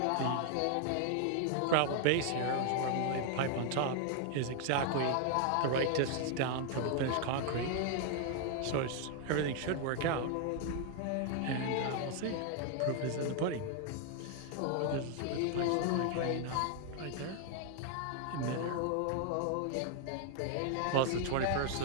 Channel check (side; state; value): both; different; correlation 0.00